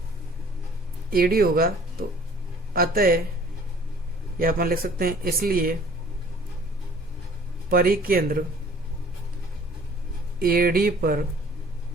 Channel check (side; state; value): both; normal; correlation 0.53